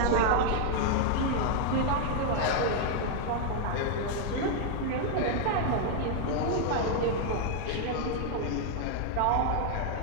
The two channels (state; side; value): different; both; correlation 0.00